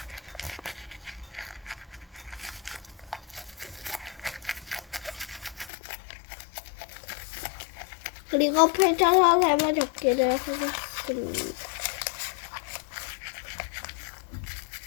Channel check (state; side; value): drops out; right; at 5.7 s